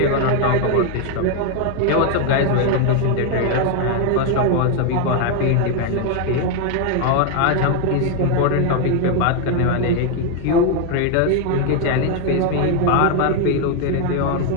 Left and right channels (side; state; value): both; different; correlation 0.01